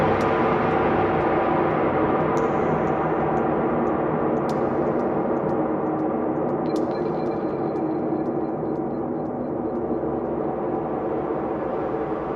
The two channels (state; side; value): identical; both; correlation 1.00